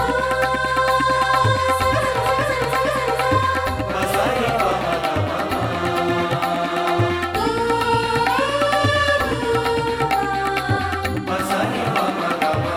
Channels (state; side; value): identical; both; correlation 1.00